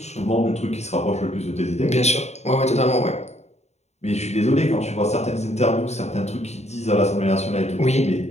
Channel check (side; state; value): right; late; 0.32 ms